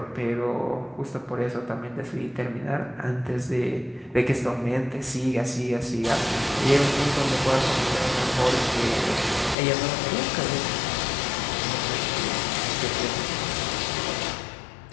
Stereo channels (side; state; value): right; drops out; at 9.6 s